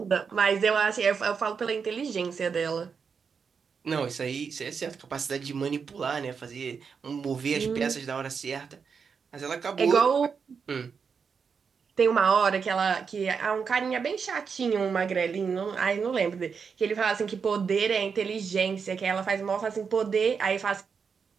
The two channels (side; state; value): left; quieter; 6.0 dB